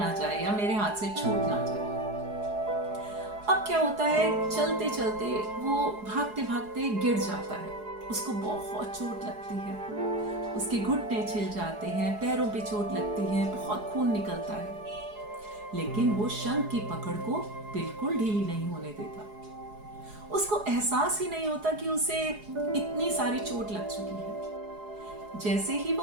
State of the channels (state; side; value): late; left; 4.8 ms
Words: जाए या मेरे हाथ से छूट ना जाए। अब क्या होता है, चलते चलते वो भागते भागते गिर जाता है। उसको बहुत चोट लगती है, उसके घुटने छिल जाते हैं, पैरों पे चोट लगती है, बहुत खून निकलता है। लेकिन वो शंख की पकड़ को बिल्कुल ढीली नहीं होने देता। उसको एहसास ही नहीं होता कि उसे इतनी सारी चोट लग चुकी है। जैसे ही